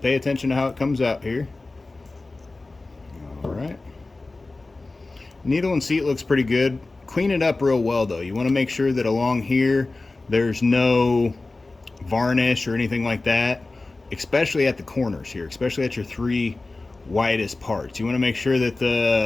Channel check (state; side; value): quieter; right; 3.3 dB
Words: attention to how it comes out here. All right. Needle and seat looks pretty good. Clean it up real well though. You want to make sure that along here there's no varnish or anything like that, especially at the corners here, especially at your 3 widest parts. You want to make sure that